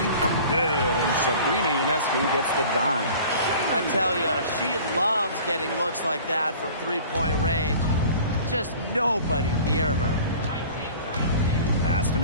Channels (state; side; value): inverted; both; correlation -0.44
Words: Good. And Sabrina Ionescu gets the dime. I tell you, she loves getting looks like that from three-point range. Just nobody near her. Pass to